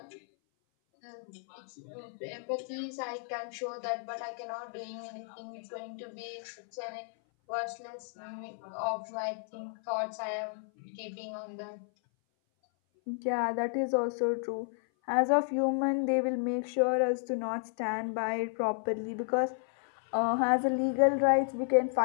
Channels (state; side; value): silent; right; 56 dB below the other